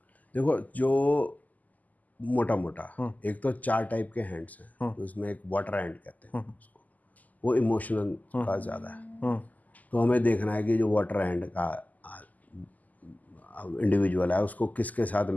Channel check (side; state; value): right; late; 0.079 ms